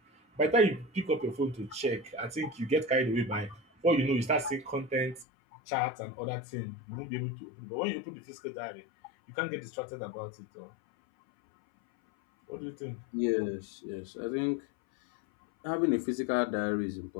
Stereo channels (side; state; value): right; drops out; at 5.2 s